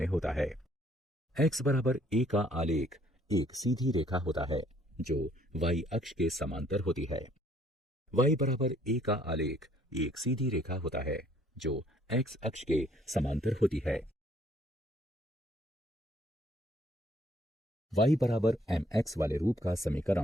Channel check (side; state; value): both; normal; correlation 0.63